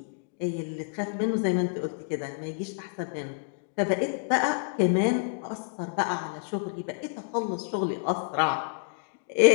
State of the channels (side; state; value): right; silent; digital silence